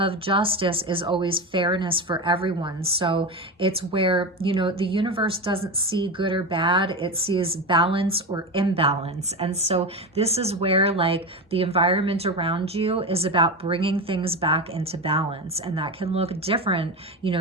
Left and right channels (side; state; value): both; normal; correlation 0.20